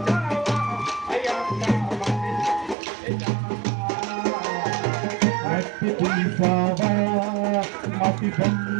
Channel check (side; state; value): left; drops out; at 2.8 s